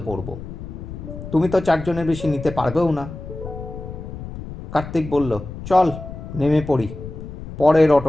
পড়ব। তুমি তো 4 জনের বেশি নিতে পারবেও না। কার্তিক বলল, চল নেমে পড়ি, পরের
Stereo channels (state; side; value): noise; left; rumble, 11 dB below the sound